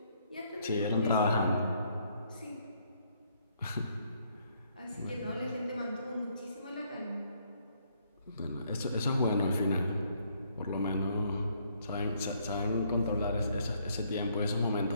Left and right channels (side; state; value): both; inverted; correlation -0.69